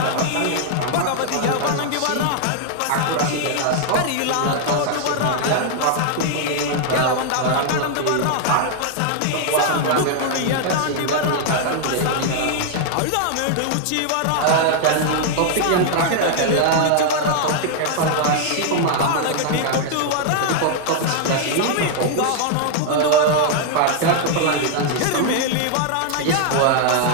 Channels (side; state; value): both; different; correlation 0.00